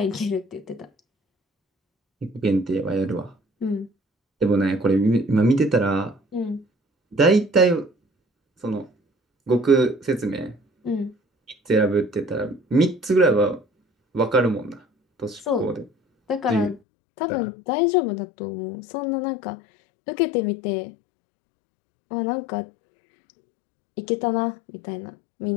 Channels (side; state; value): right; drops out; at 16.8 s